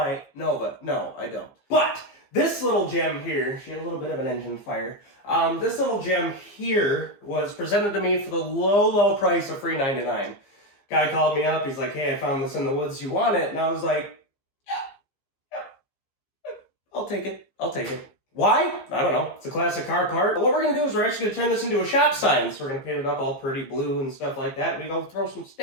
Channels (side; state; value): right; late; 15 ms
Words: Nova? No, I don't. But this little gem here, she had a little bit of an engine fire. This little gem here was presented to me for the low price of $3.99. Guy called me up. He's like, "Hey, I found this in the woods. You want it?" And I was like, "Yeah, I'll take it. Why? I don't know. It's a classic car part. But what we're going to do is we're actually going to turn this into a shop sign. So we're going to paint it up all pretty blue and stuff like that. We're going to throw some